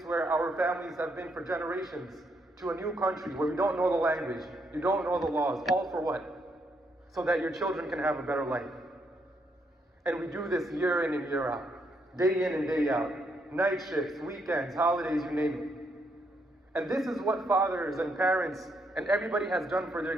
where our families have been for generations to a new country where we don't know the language, you don't know the laws. All for what? So that your children can have a better life. And we do this year in and year out, day in and day out, night shifts, weekends, holidays, you name it. And this is what fathers and parents and everybody has done for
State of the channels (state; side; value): normal; both; correlation 0.75